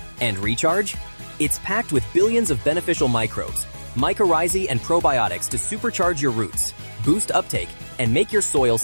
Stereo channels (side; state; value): both; inverted; correlation -1.00